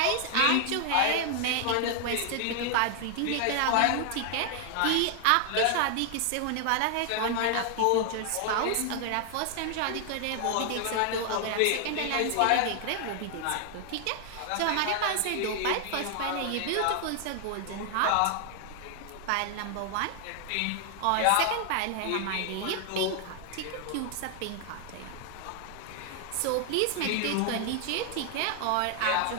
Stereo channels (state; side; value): different; both; correlation 0.00